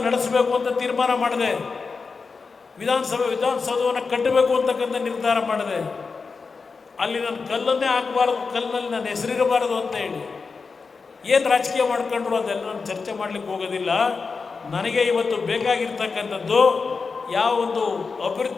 ನಡೆಸಬೇಕು ಅಂತ ತೀರ್ಮಾನ ಮಾಡಿದೆ. ವಿಧಾನಸೌಧವನ್ನು ಕಟ್ಟಬೇಕು ಅಂತಕ್ಕಂಥ ನಿರ್ಧಾರ ಮಾಡಿದೆ. ಅಲ್ಲಿ ನಾನು ಕಲ್ಲನ್ನೇ ಹಾಕಬಾರ್ದು, ಕಲ್ಲಿನಲ್ಲಿ ನನ್ನ ಹೆಸರಿರಬಾರದು ಅಂತ ಹೇಳಿ ಏನು ರಾಜಕೀಯ ಮಾಡ್ಕೊಂಡ್ರು ಅದೆಲ್ಲ ನಾನು ಚರ್ಚೆ ಮಾಡಲಿಕ್ಕೆ ಹೋಗೋದಿಲ್ಲ. ನನಗೆ ಇವತ್ತು ಬೇಕಾಗಿರ್ತಕ್ಕಂಥದ್ದು ಯಾವ ಒಂದು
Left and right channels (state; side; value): quieter; right; 4.7 dB